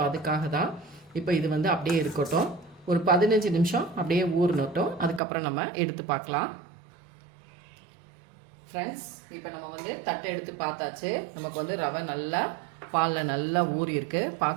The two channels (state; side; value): drops out; left; at 5.2 s